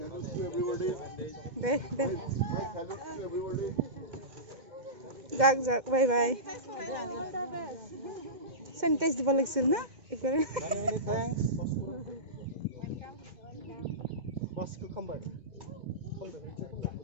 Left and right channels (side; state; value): left; late; 2.1 ms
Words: যাক বাই বাই স্যানিটাইজ দিব লাগিছিল না একবারে Baskı come back. Come back.